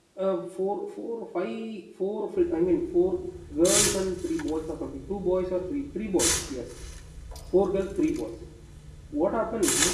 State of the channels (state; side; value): identical; both; correlation 1.00